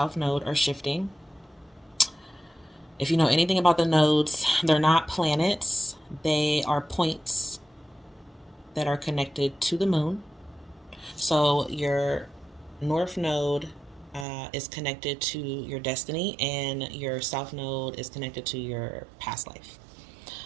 Node are shifting. If you know anything about the nodes, they're not planets, they are points that are connected to the moon. So your North Node is connected to your destiny, and your South Node is connected to your past life.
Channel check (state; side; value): drops out; left; at 14.2 s